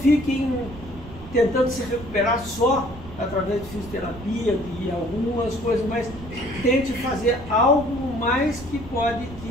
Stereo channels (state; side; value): noise; right; rumble, 15 dB below the sound